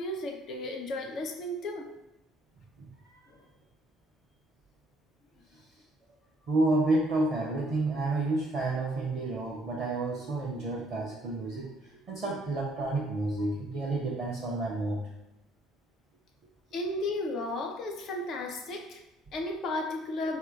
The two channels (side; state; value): both; normal; correlation 0.65